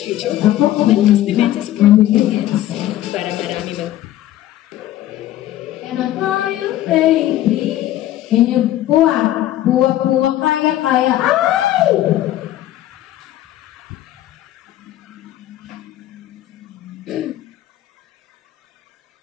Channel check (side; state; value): right; quieter; 13.6 dB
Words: Tree Choco. Ako, Malakas depensa sa performance. Para marami mag... Can I call you baby? Can you puwa? Puwa, kaya. Ay!